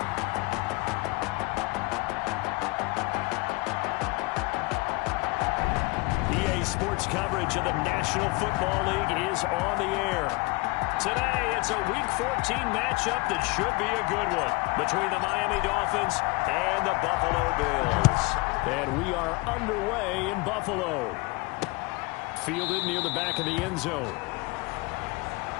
EA Sports coverage of the National Football League is on the air. Today, it's a Week 14 matchup that should be a good one between the Miami Dolphins and the Buffalo Bills. And we are underway in Buffalo. Fielded near the back of the end zone.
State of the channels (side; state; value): right; quieter; 25.4 dB